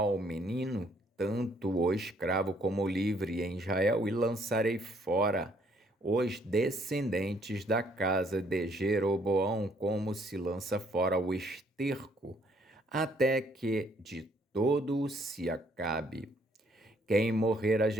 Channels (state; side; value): normal; both; correlation 0.66